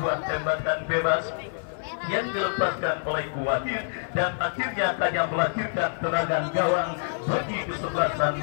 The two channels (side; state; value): right; silent; 58 dB below the other